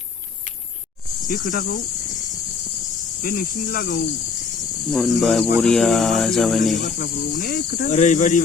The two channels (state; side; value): quieter; right; 5.0 dB